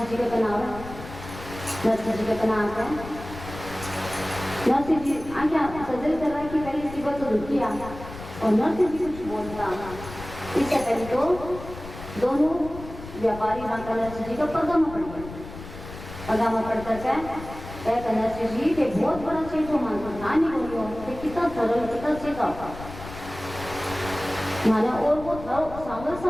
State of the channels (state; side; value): noise; left; rumble, 13 dB below the sound